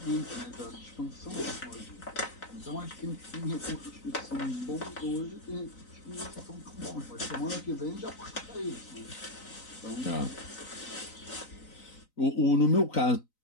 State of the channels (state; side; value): late; right; 3.9 ms